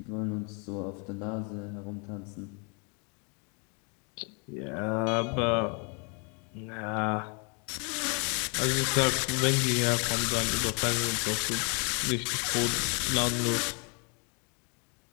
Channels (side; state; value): right; quieter; 35.4 dB